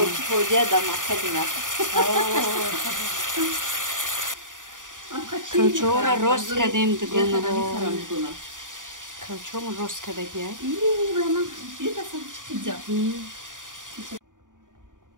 پوجه دام خیلی نه. کلچه را روست کردیم دیگونه رو. کلچه رو روست کرده گیاه. یه دفعه چیزا.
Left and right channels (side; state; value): left; late; 0.88 ms